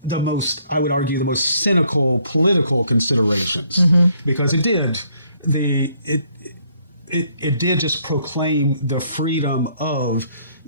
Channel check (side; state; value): both; inverted; correlation -0.67